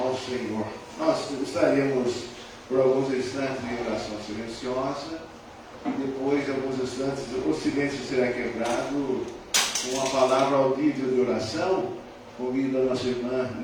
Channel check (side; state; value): both; identical; correlation 1.00